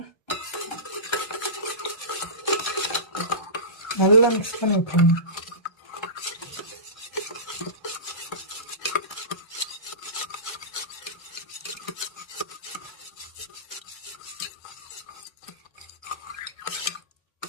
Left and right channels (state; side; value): late; right; 1.3 ms